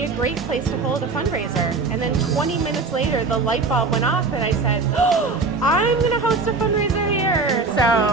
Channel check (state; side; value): quieter; left; 4.1 dB